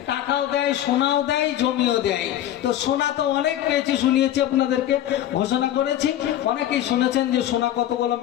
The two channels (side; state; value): right; quieter; 12.1 dB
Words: টাকাও দেয়, সোনাও দেয়, জমিও দেয়। তো সোনা তো অনেক পেয়েছি, শুনিয়েছি, আপনাদেরকে ঘোষণা করেছি, অনেকেই শুনেছেন যে সোনা কতগুলো